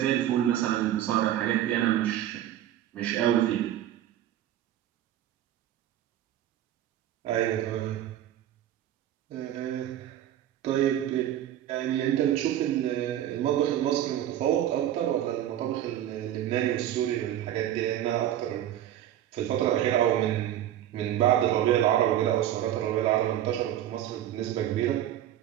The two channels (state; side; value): quieter; left; 11.9 dB